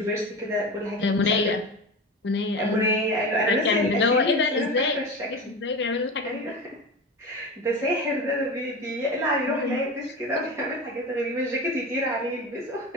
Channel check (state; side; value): normal; both; correlation 0.27